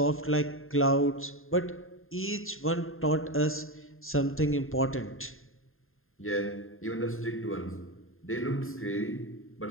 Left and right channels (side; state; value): right; late; 0.61 ms